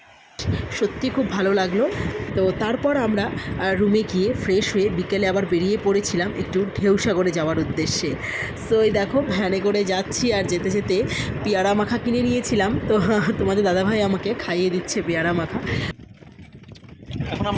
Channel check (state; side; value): identical; both; correlation 1.00